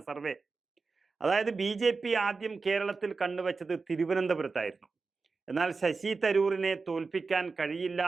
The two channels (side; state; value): left; quieter; 4.3 dB